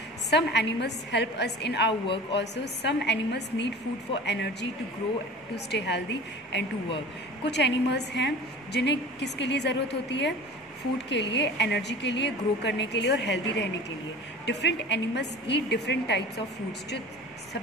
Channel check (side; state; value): both; normal; correlation 0.38